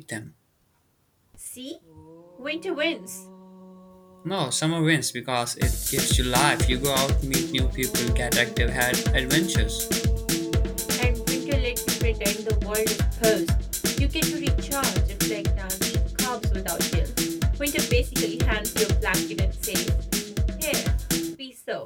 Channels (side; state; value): both; identical; correlation 1.00